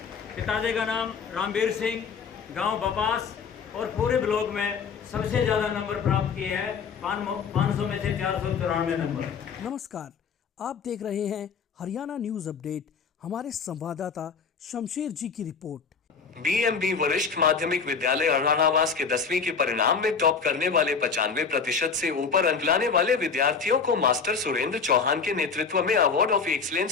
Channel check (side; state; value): right; quieter; 5.7 dB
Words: पिताजी का नाम रामवीर सिंह, गांव बपास, और पूरे ब्लॉक में सबसे ज़्यादा नंबर प्राप्त किए हैं, 500 में से 494 नंबर। नमस्कार, आप देख रहे हैं हरियाणा न्यूज अपडेट। हमारे संवाददाता शमशेर जी की रिपोर्ट। बीएमबी वरिष्ठ माध्यमिक विद्यालय अरणावास के 10वीं के परिणाम में टॉप करने वाले 95% से ऊपर अंक लाने वाले विद्यार्थियों को मास्टर सुरेंद्र चौहान के नेतृत्व में अवार्ड ऑफ